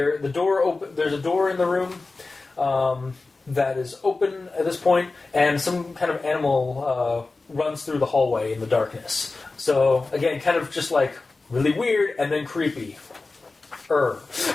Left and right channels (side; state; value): right; quieter; 3.6 dB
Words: a door in the room that is open at this point, and some kind of animal runs through the hallway in the darkness. So, again, kind of just really weird and then creepy. And